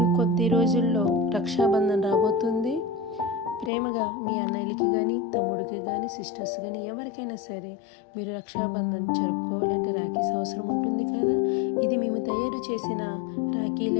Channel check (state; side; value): drops out; right; at 3.7 s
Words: రోజుల్లో రక్షాబంధన్ రాబోతుంది. ప్రేమగా మీ అన్నయ్యలకి కానీ తమ్ముడికి కానీ సిస్టర్స్ కానీ ఎవరికైనా సరే మీరు రక్షాబంధన్ జరుపుకోవాలంటే రాఖీస్ అవసరం ఉంటుంది కదా. ఇది మేము తయారు చేసిన